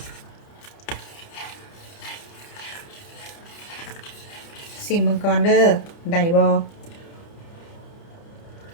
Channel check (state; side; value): late; right; 30 ms